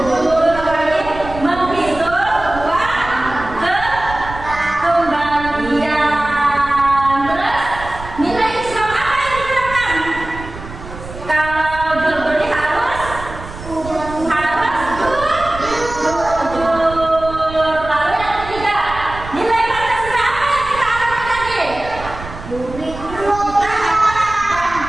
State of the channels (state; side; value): noise; right; rumble, 13 dB below the sound